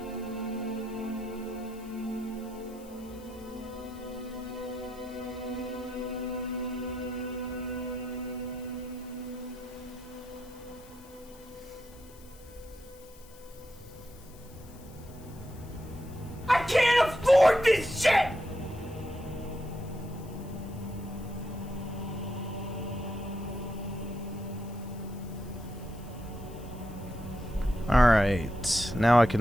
I can't afford this shit! Alright, now I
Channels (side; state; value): left; noise; hiss, 23 dB below the sound